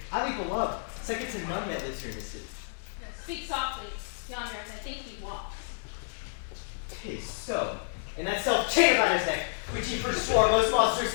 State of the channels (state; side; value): silent; right; digital silence